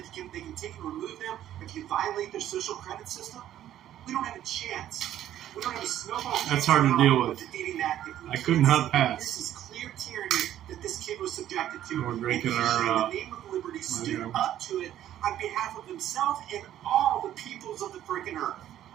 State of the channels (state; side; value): quieter; left; 11.9 dB